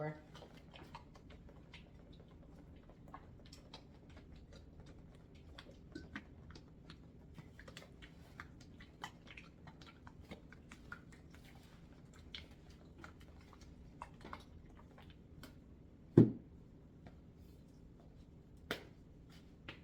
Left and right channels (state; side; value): identical; both; correlation 1.00